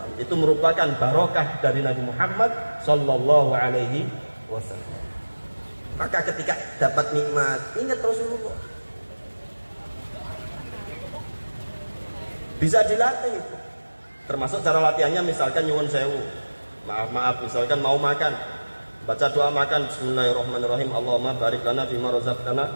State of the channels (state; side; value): inverted; both; correlation -1.00